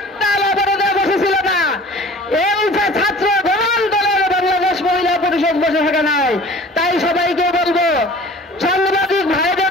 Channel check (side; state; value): both; normal; correlation 0.45